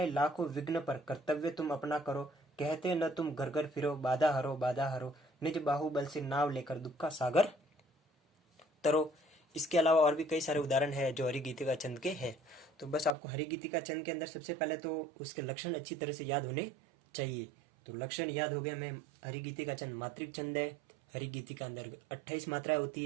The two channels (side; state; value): left; drops out; at 13.2 s